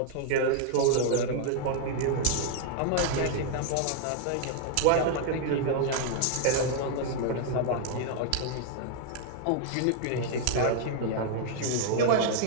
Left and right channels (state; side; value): different; both; correlation 0.00